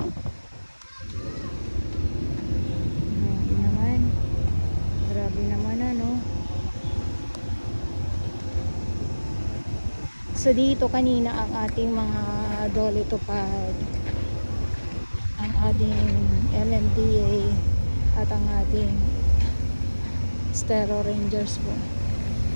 So dito kanina ang ating mga dolitupad, ang ating MMDA at ang ating Stero Rangers po.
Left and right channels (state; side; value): inverted; both; correlation -1.00